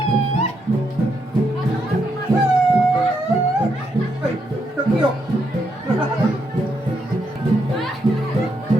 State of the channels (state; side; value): normal; both; correlation 0.78